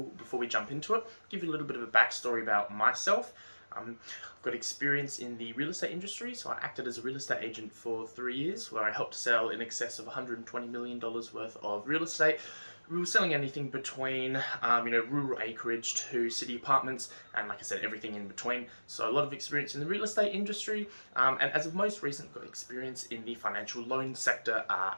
before we jump into it, give you a little bit of a backstory about myself. I've got experience in the real estate industry, so I acted as a real estate agent for 3 years where I helped sell in excess of $120 million worth of real estate. We were selling anything between, rural acreage to city apartments, and like I said, everything in between. So a lot of experience in the real estate industry, and as of most recent, got experience in the financial loan sector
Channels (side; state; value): both; inverted; correlation -1.00